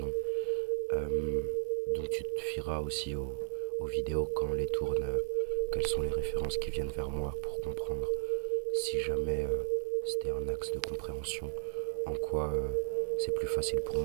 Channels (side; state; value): left; silent; digital silence